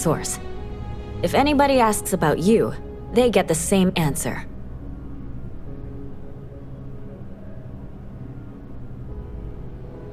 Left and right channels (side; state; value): both; identical; correlation 1.00